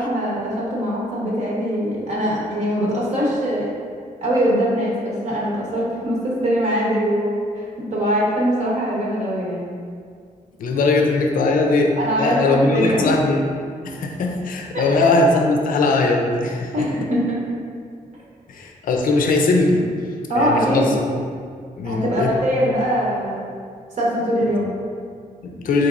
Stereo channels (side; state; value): both; normal; correlation 0.58